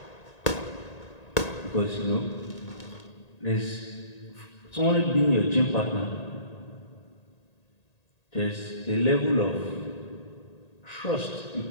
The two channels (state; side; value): late; right; 1.8 ms